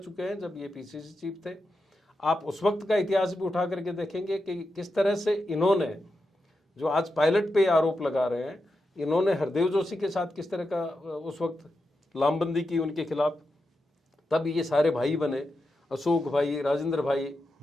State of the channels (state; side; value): normal; both; correlation 0.88